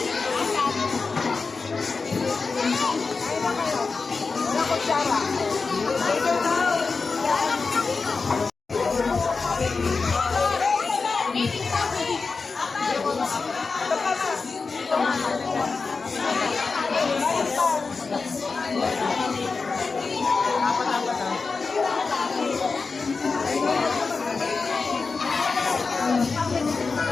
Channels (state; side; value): quieter; right; 4.4 dB